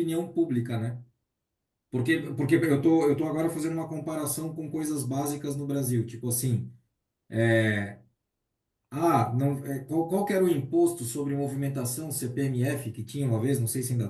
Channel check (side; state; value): both; identical; correlation 1.00